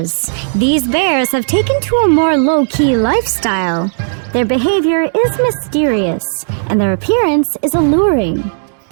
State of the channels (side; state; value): left; silent; digital silence